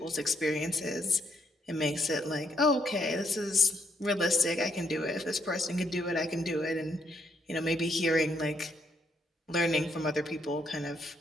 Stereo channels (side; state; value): both; normal; correlation 0.74